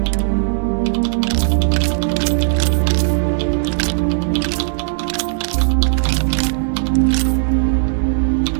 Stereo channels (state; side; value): silent; left; digital silence